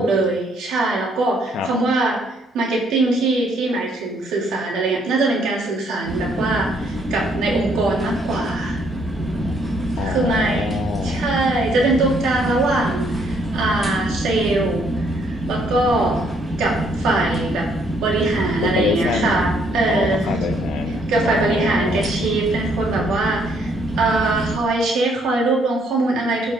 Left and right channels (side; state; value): both; normal; correlation 0.68